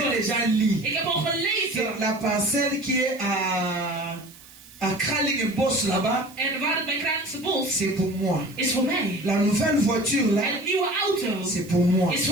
déjà lu. Ik heb al gelezen. La parcelle qui est à Kraling Boss là-bas, En waar het bij Kralingse Bos c'est pour moi. is voor mij. La nouvelle voiture là, En het nieuwe auto c'est pour moi. is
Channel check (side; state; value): right; noise; hiss, 22 dB below the sound